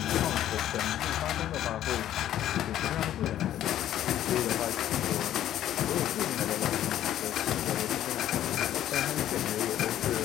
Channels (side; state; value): right; quieter; 12.0 dB